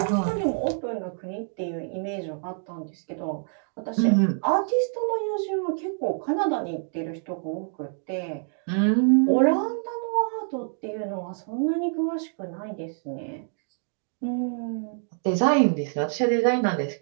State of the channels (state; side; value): silent; left; 61 dB below the other